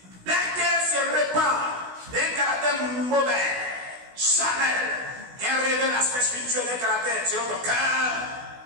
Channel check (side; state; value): left; late; 16 ms